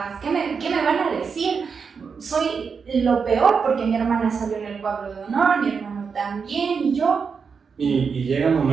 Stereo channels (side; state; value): left; quieter; 5.7 dB